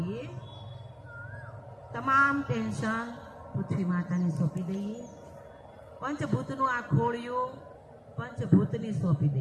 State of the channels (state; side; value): identical; both; correlation 1.00